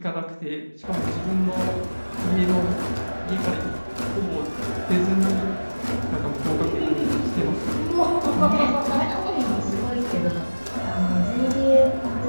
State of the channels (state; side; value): inverted; both; correlation -1.00